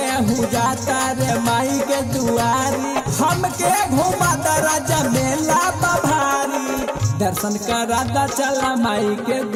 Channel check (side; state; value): both; identical; correlation 1.00